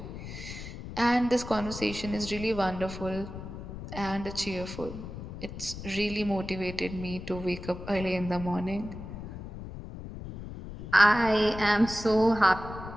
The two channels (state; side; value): noise; left; rumble, 10 dB below the sound